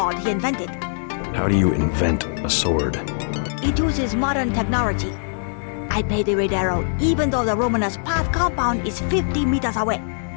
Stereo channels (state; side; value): silent; right; 64 dB below the other